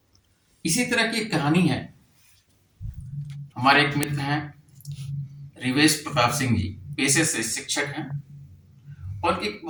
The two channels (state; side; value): identical; both; correlation 1.00